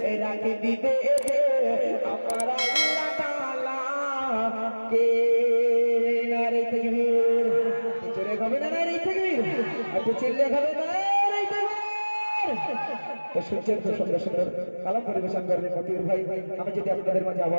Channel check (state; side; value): inverted; both; correlation -1.00